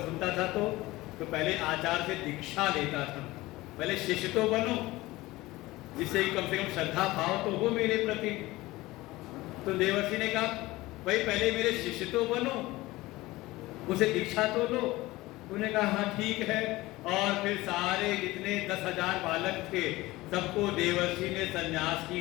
सुनता था तो पहले आचार्य से दीक्षा लेता था। पहले शिष्य तो बनो, जिससे कम से कम श्रद्धा भाव तो हो मेरे प्रति। तो देवर्षि ने कहा, भाई पहले मेरे शिष्य तो बनो, उसे दीक्षा तो लो। उन्होंने कहा, हाँ ठीक है। और फिर सारे जितने 10,000 बालक थे, सबको देवर्षि ने संन्यास की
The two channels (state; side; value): quieter; right; 19.2 dB